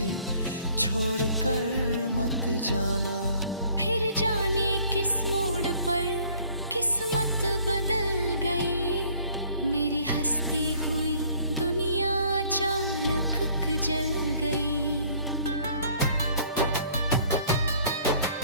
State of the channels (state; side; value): inverted; both; correlation -0.58